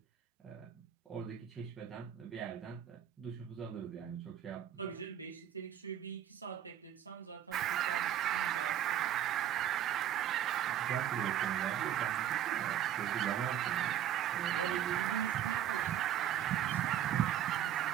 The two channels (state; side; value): quieter; left; 10.8 dB